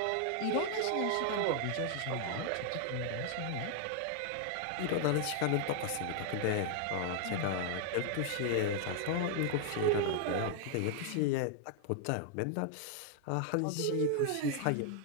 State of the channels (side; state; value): both; different; correlation 0.00